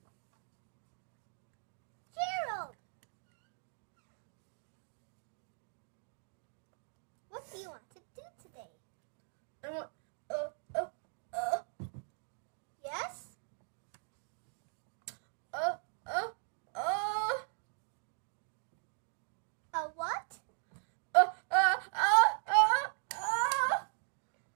Gerald! What do you want to do today? I want, Yes? A what? A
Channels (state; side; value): silent; left; digital silence